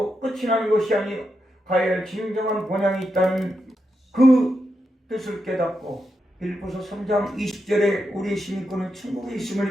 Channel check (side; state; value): both; normal; correlation 0.85